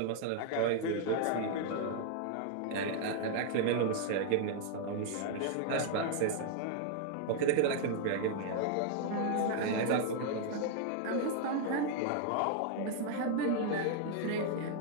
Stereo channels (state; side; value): different; both; correlation 0.00